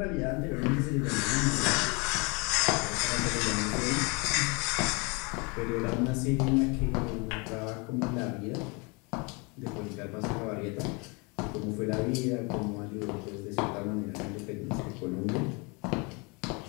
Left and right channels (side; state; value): right; quieter; 30.1 dB